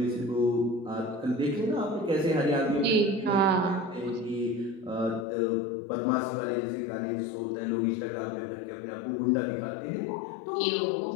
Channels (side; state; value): right; drops out; at 5.2 s